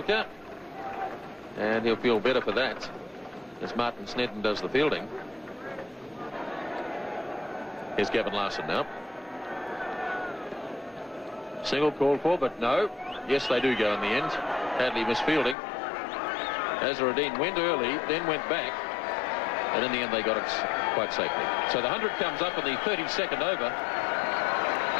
and he'll feel better for that as Martin Snedden does the fielding. Here's Gavin Larson now. Single called for, but no. Yes, they do go in the end. Hadley misfielding. Azharuddin went early, then went back, and in the end they got it quite safely. So the 100 comes up in the 32nd over.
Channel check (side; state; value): right; drops out; at 15.6 s